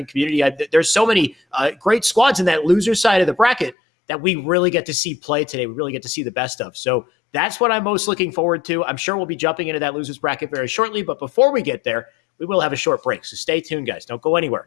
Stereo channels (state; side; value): drops out; right; at 3.8 s